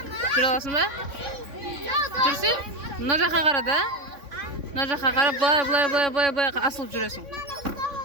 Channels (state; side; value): late; left; 3.6 ms